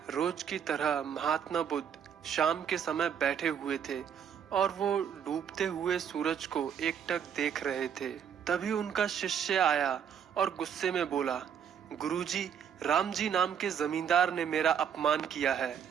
रोज की तरह महात्मा बुद्ध शाम के समय बैठे हुए थे और वो डूबते हुए सूरज को एकटक देख रहे थे। तभी उनका शिष्य आया और गुस्से में बोला, गुरुजी, राम जी नाम के जमींदार ने मेरा अपमान किया है।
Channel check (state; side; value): quieter; left; 8.1 dB